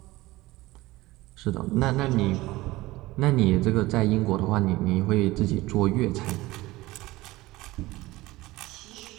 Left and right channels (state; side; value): quieter; left; 19.1 dB